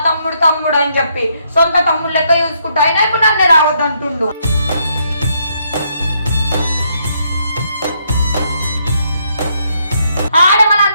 తమ్ముడు తమ్ముడు అని చెప్పి సొంత తమ్ముడు లెక్క చూసుకుంటా, అయినా ఇప్పుడు నన్ను రావద్దు అంటుండు. ఆడ మన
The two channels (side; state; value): both; inverted; correlation -0.74